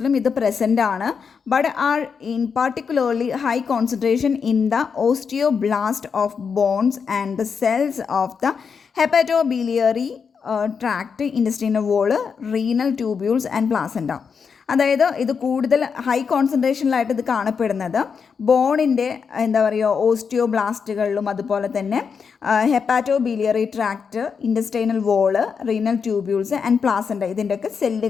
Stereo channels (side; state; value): right; quieter; 6.1 dB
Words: ഇത് പ്രസൻ്റ് ആണ്. But are in particularly high concentration in the osteoblast of bones and the cells of the hepatobiliary tract, intestinal wall, renal tubules and placenta. അതായത് ഇത് കൂടുതൽ ഹൈ കോൺസെൻട്രേഷനിലായിട്ട് ഇത് കാണപ്പെടുന്നത് ബോണിൻ്റെ എന്താ പറയുക ഓസ്റ്റിയോബ്ലാസ്റ്റുകളിലും അതുപോലെ തന്നെ hepatobiliary tract, intestinal wall, renal tubules and placenta ഇതിൻ്റെയൊക്കെ